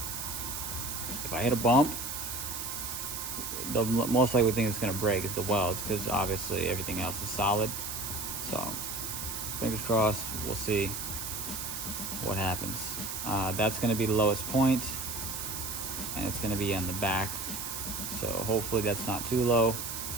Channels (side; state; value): right; noise; hiss, 5 dB below the sound